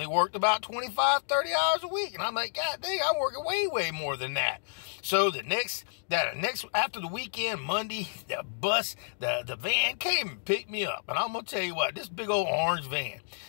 worked about 25, 30 hours a week. And I'm like, "God dang, I'm working way, way more than that." So after the weekend, Monday, the van came and picked me up. And I'm going to tell you what, this big old orange van,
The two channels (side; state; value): right; silent; digital silence